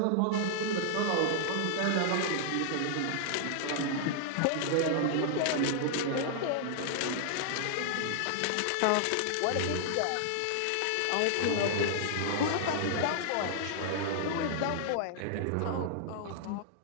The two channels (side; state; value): both; different; correlation -0.01